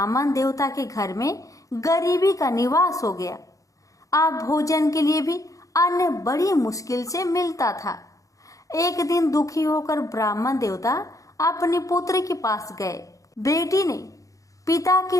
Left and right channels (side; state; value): right; late; 0.16 ms